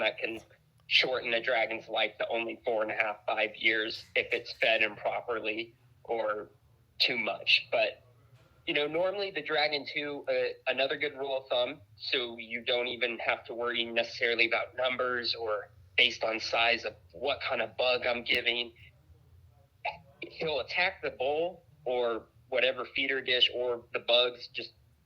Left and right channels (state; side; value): identical; both; correlation 1.00